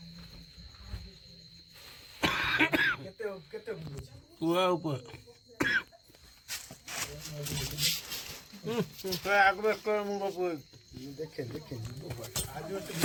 কেতে কেতে বুঝছি পুরা উপর একবার করে মুখ উপর দেখে দেখে আজ তো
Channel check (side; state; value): both; identical; correlation 1.00